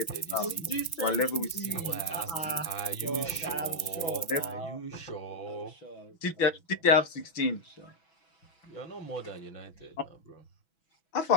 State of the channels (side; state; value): right; late; 6.1 ms